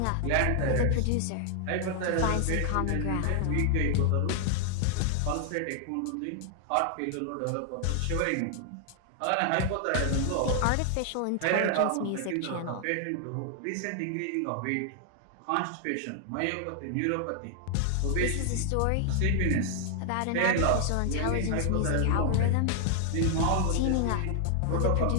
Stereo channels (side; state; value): both; different; correlation 0.00